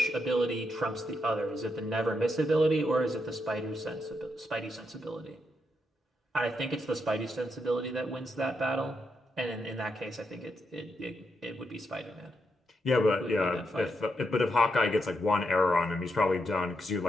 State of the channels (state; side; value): normal; both; correlation 0.81